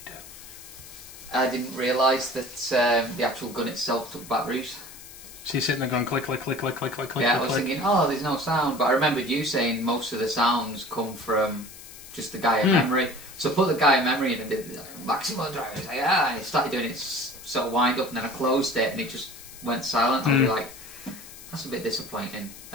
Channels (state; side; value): noise; left; hiss, 16 dB below the sound